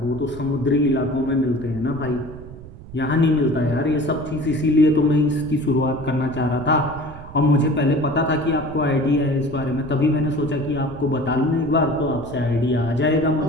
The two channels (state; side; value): noise; right; rumble, 15 dB below the sound